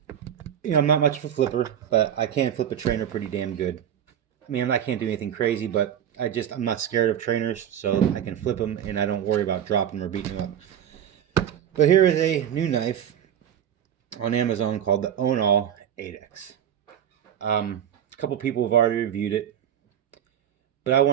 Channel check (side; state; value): left; quieter; 9.8 dB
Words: I'm not much of a flipper, but I can flip a trainer pretty damn good. I mean, I can't do anything crazy, but I'm not scared of trainers, so I can flip them and I don't worry about dropping them or beating them up. But here is a new knife on Amazon called the Ownall addex. A couple people have already reviewed it, but I